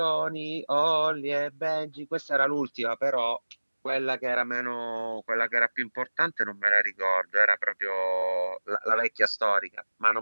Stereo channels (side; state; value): both; inverted; correlation -1.00